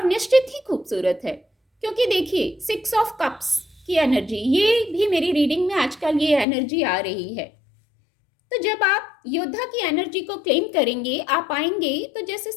निश्चित ही खूबसूरत है। क्योंकि देखिए 6 ऑफ कप्स की एनर्जी, ये भी मेरी रीडिंग में आजकल ये एनर्जी आ रही है। तो जब आप योद्धा की एनर्जी को क्लेम करेंगे, आप आएंगे, तो जैसे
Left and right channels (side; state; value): right; drops out; at 6.5 s